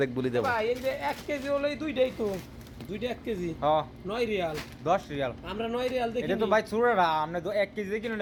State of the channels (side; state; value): both; identical; correlation 1.00